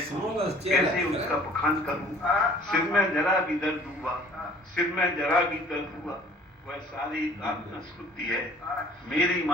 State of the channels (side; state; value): both; normal; correlation 0.52